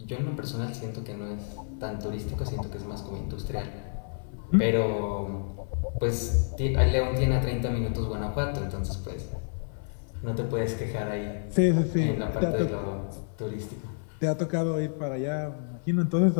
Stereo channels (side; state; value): right; silent; 58 dB below the other